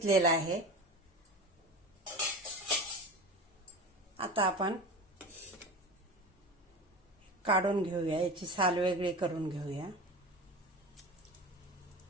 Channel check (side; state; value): both; normal; correlation 0.30